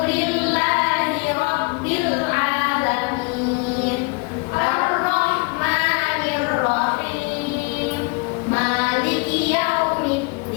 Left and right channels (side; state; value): right; quieter; 29.3 dB